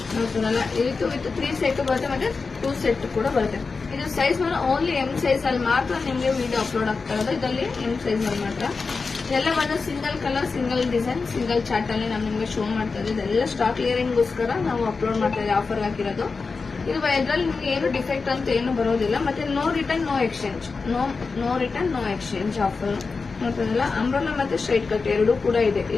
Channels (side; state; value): right; quieter; 4.4 dB